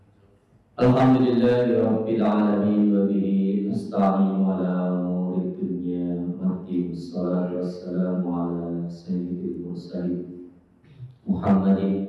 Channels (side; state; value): both; identical; correlation 1.00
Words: Rabbil alamin wa bihi nasta'inu ala umuri dunya waddin. Wassalatu wassalamu ala sayyidil mursalin